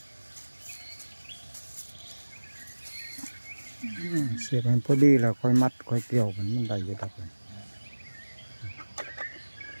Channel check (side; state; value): both; inverted; correlation -1.00